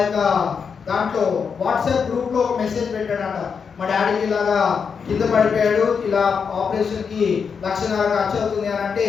యొక్క దాంట్లో వాట్సాప్ గ్రూప్లో ఒక మెసేజ్ పెట్టాడంట, మా డాడీకి ఇలాగా కింద పడిపోయాడు, ఇలా ఆపరేషన్కి 1,50,000 ఖర్చు అవుతుంది అని అంటే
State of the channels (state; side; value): quieter; right; 6.1 dB